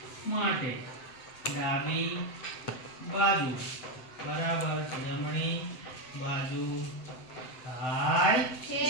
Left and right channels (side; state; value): right; late; 7.8 ms